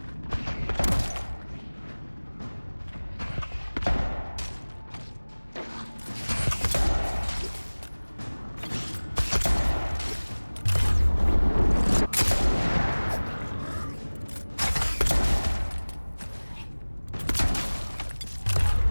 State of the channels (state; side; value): inverted; both; correlation -1.00